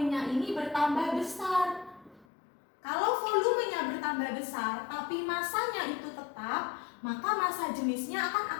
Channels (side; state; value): right; drops out; at 2.2 s